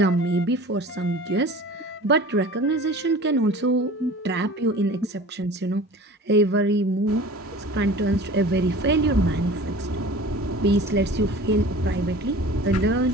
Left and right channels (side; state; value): both; normal; correlation 0.41